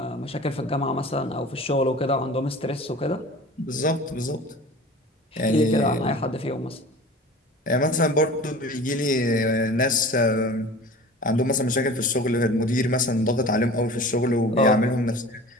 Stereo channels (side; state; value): both; normal; correlation 0.40